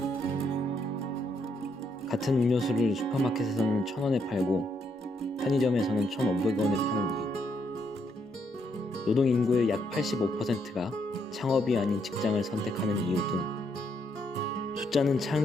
같은 음료수를 슈퍼마켓에서는 1,000원에 팔고 편의점에서는 1,500원에 파는 이유, 노동인구의 약 85%가 창업이 아닌 직장을 선택하는 이유 등 숫자는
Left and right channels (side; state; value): both; normal; correlation 0.75